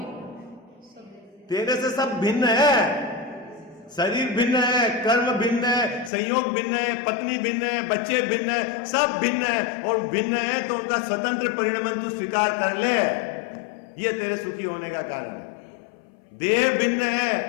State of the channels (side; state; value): right; drops out; at 6.1 s